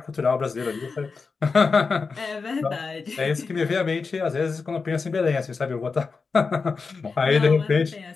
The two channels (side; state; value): right; quieter; 4.7 dB